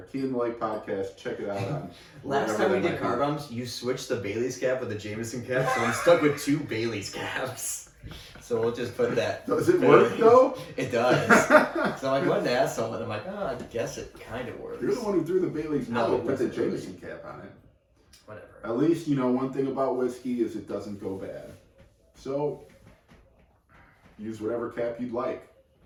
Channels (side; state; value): both; identical; correlation 1.00